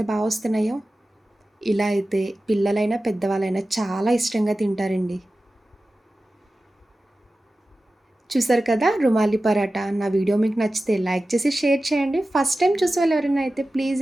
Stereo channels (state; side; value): normal; both; correlation 0.95